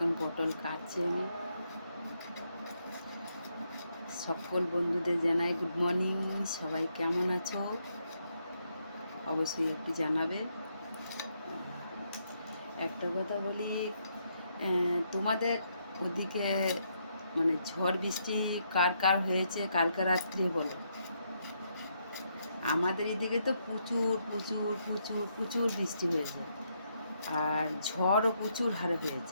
পটল কাটছি আমি। সকল বন্ধুদের জানাই গুড মর্নিং। সবাই কেমন আছো অবশ্যই একটু জানাবে। একটা কথা বলি, তোমাদের ওদিকে মানে ঝড় বৃষ্টি কার কার হয়েছে কালকে রাত্রে বলো। আমাদের এদিকে তো প্রচুর প্রচুর প্রচুর প্রচুর বৃষ্টি হয়েছে, আর ঝড়ও প্রচুর হারে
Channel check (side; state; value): both; inverted; correlation -0.77